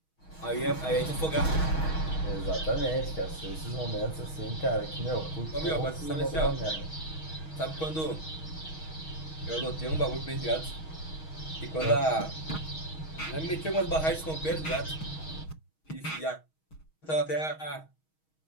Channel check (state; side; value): late; right; 6.3 ms